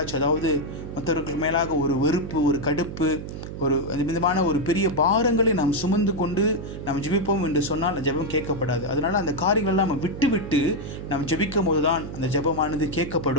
அதாவது மற்றவர்களுக்கு மேலாக ஒரு வெறுப்பு, ஒரு கடுப்பு, ஒரு விதமான ஒரு பெரிய பாரங்களை நாம் சுமந்து கொண்டு நாம் ஜெபிப்போம் என்று சொன்னால் அந்த ஜெபம் கேட்கப்படாது. அதனால் அந்த காரியங்கள்லாம் நம்ம விட்டு நாம் ஜெபிக்கும் போது தான் அந்த ஜெபமானது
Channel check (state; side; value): noise; right; hum, 9 dB below the sound